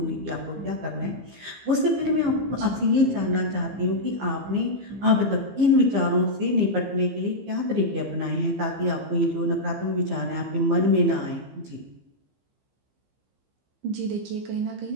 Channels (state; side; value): late; left; 15 ms